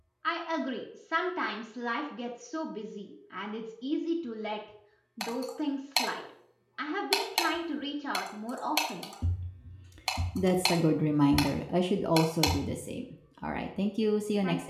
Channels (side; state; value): both; identical; correlation 1.00